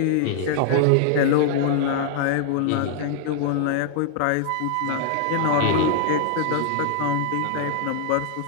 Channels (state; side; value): different; both; correlation 0.00